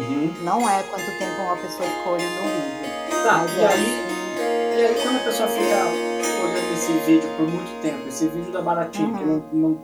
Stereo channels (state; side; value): identical; both; correlation 1.00